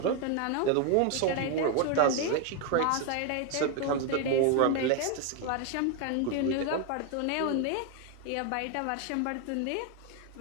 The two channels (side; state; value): both; different; correlation 0.01